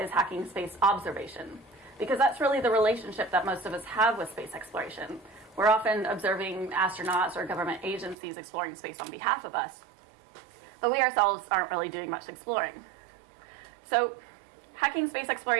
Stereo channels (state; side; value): drops out; left; at 8.2 s